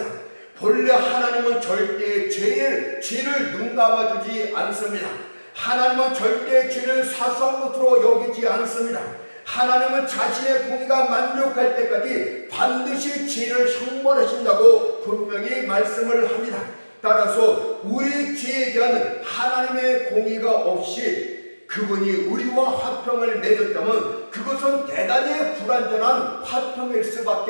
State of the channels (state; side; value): inverted; both; correlation -1.00